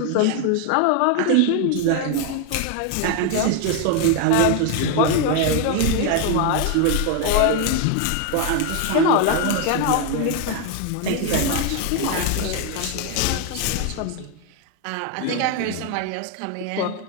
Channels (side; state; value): both; different; correlation 0.01